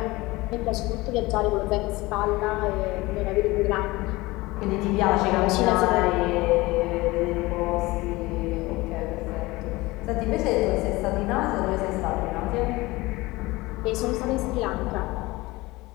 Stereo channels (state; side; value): quieter; right; 21.1 dB